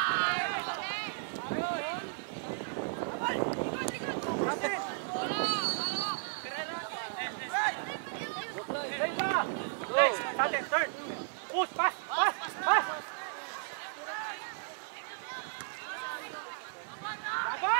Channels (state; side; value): silent; left; digital silence